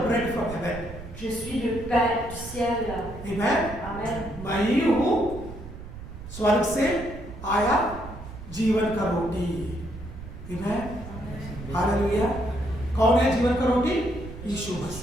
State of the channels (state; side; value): noise; right; rumble, 12 dB below the sound